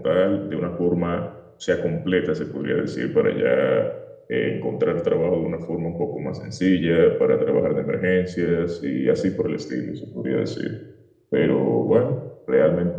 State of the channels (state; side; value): identical; both; correlation 1.00